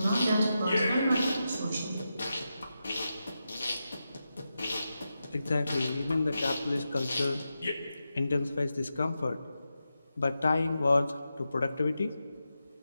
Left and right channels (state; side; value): inverted; both; correlation -0.89